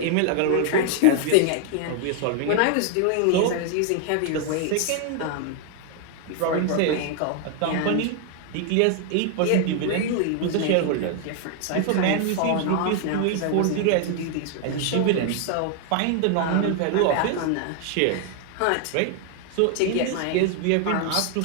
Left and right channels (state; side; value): different; both; correlation 0.00